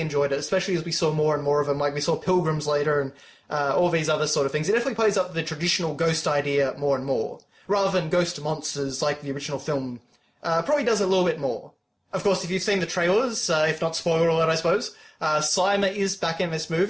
it, especially as we saw more and more of them. Like, we saw pilgrims later and all these other sort of things. It definitely plays up the traditional ghost idea more and more, rather than ghost monsters like the original film. Probably does a little bit more. Of course, if you've seen the trailers, if not spoiler alert, I suppose, Slimer is back in this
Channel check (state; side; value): identical; both; correlation 1.00